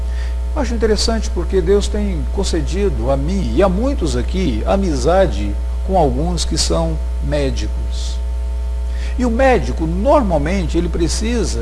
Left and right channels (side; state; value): both; identical; correlation 1.00